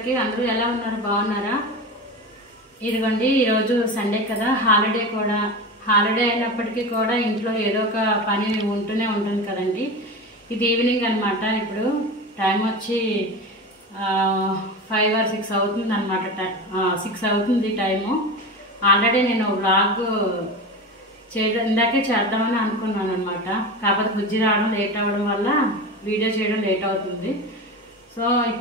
అందరూ ఎలా ఉన్నారు? బాగున్నారా? ఇదిగోండి, ఈరోజు సండే కదా, హాలిడే అయినప్పటికీ కూడా ఇంట్లో ఏదో ఒక పని ఉంటూనే ఉంటుంది కదండి. ఇది ఈవినింగ్ అనమాట. ఇప్పుడు టైం వచ్చి 5 or 6 అవుతుంది అనమాట. 6 అవుతుంది టైము. ఆల్రెడీ నేను వ్లాగ్ ఇందాకే చేద్దామని అనుకున్నాను అనమాట. కాకపోతే బుజ్జి రావడం లేట్ అవ్వడం వల్ల వీడియో చేయడం లేట్ అవుతుంది. సో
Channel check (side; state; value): both; normal; correlation 0.26